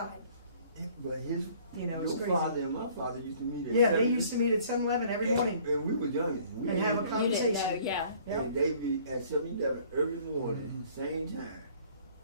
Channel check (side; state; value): both; inverted; correlation -0.56